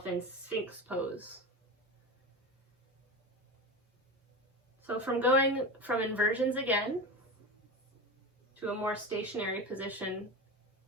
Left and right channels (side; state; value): both; normal; correlation 0.24